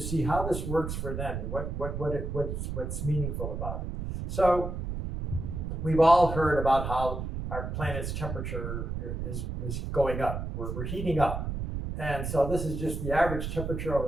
see how this works for them and what's meaningful about it. So we've all heard about how our planet's temperature is going up. We're heating up. And so this is just the average temperature over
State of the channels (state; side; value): noise; right; rumble, 4 dB below the sound